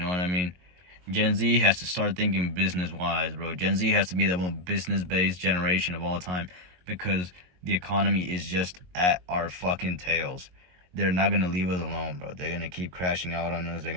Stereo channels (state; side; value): late; left; 22 ms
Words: what I mean? Gen Z has to start thinking business-wise, bro. Gen Z has to be the most business-based generation of all time, because the economy is just at our fucking tails. They're not gonna leave us alone, bro. They're gonna keep crashing out on us. They're